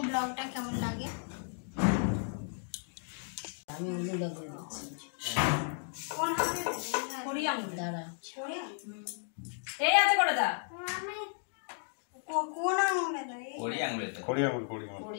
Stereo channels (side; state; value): right; silent; 55 dB below the other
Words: ব্লগটা কেমন লাগে। আমি কোন হাতে করি আঙুল দাঁড়া এই আছে করে দা কোন আঙুলে দেয়? কোড়ি আঙুলে দাও।